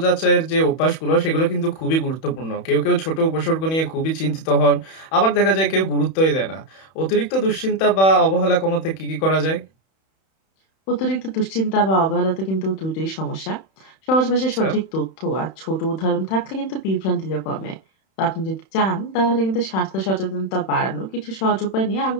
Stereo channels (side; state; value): right; late; 31 ms